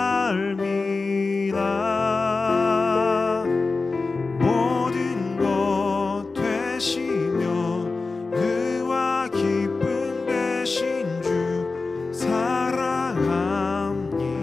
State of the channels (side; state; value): right; quieter; 3.9 dB